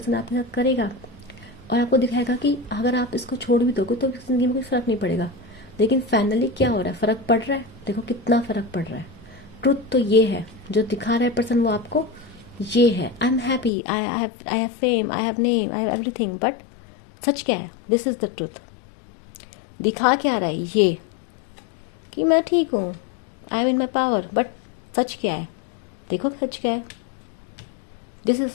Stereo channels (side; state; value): right; drops out; at 13.7 s